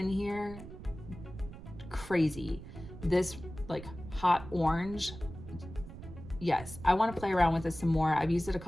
here, crazy. This like hot orange, yes, I want to play around with this some more. I've used it a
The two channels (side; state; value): right; noise; rumble, 13 dB below the sound